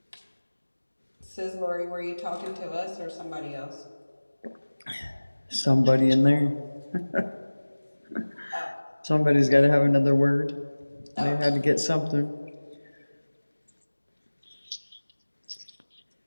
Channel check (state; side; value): inverted; both; correlation -1.00